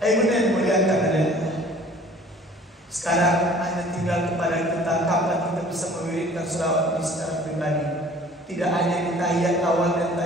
muliakan Allah. Sekarang hanya tinggal kepada kita kapan kita bisa mewiridkan selawat ini secara pribadi. Tidak hanya di tahiyat awal dan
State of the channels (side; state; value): both; normal; correlation 0.50